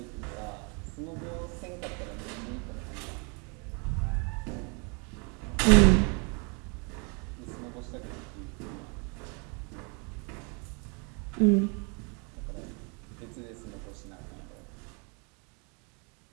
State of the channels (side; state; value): left; quieter; 34.0 dB